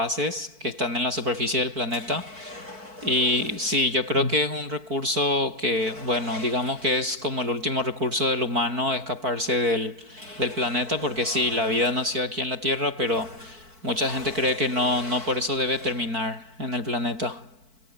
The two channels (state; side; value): late; left; 4.5 ms